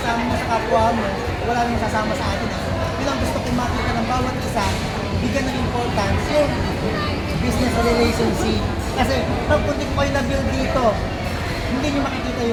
mo sa kapwa mo, wala nang sasama sa atin. Yun ang gusto kong makita ng bawat isa, bigyan ng importance yung business relationship. Kasi pag kung di ko kayo na-build dito, hindi nyo makikita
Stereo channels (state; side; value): identical; both; correlation 1.00